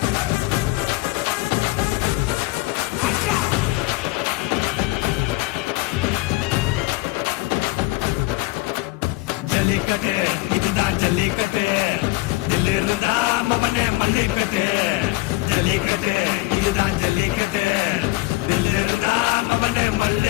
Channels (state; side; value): quieter; right; 21.0 dB